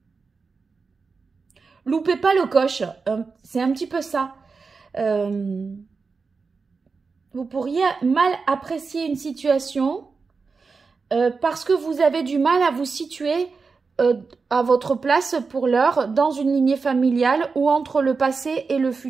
loupez pas le coche. C'est un petit peu ça. Vous pourriez mal apprécier une situation parce que vous avez du mal à vous situer à votre place pour l'heure dans une lignée familiale ou entre le passé et le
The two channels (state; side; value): quieter; left; 4.7 dB